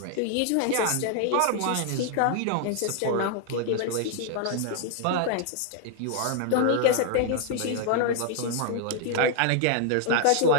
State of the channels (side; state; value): both; different; correlation 0.00